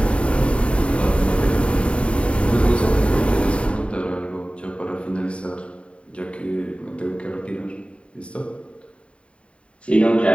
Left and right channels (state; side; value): late; right; 0.059 ms